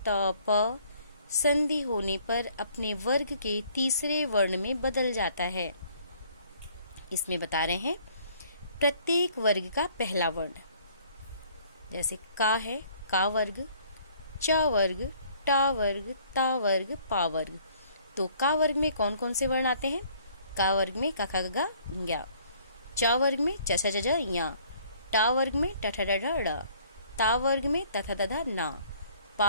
प संधि होने पर अपने वर्ग के तीसरे वर्ण में बदल जाता है। इसमें बता रहे हैं प्रत्येक वर्ग का पहला वर्ण, जैसे का है का वर्ग, च वर्ग, टा वर्ग, ता वर्ग, पा वर्ग। तो का वर्ग में कौन कौन से वर्ण आते हैं? का वर्ग में का खा गा ज्ञा, च वर्ग में च छ ज झ ञ, टा वर्ग में ट ठ ड ढ ड़, ता वर्ग में त थ द ध ना,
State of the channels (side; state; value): both; inverted; correlation -0.59